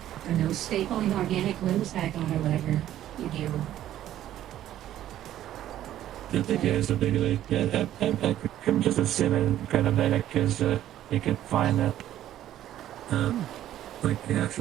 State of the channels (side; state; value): left; quieter; 12.4 dB